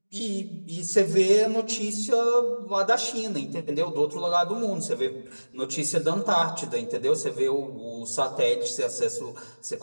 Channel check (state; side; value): inverted; both; correlation -1.00